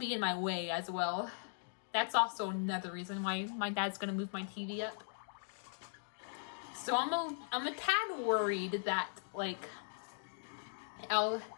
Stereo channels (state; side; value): silent; right; digital silence